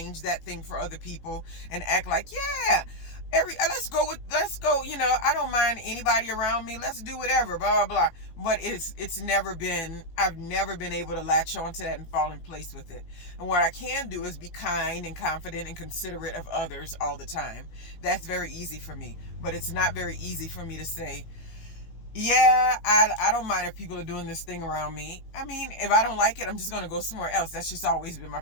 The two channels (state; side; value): late; right; 18 ms